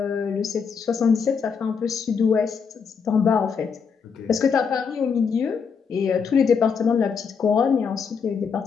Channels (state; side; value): quieter; right; 6.1 dB